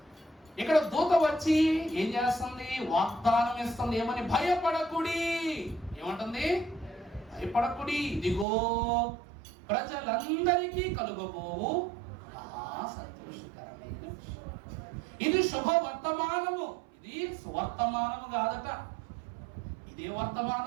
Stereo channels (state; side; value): drops out; left; at 8.5 s